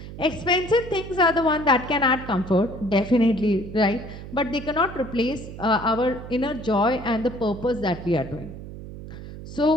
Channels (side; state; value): right; noise; hum, 12 dB below the sound